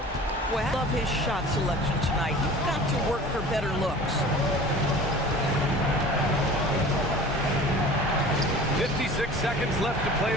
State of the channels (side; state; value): both; normal; correlation 0.42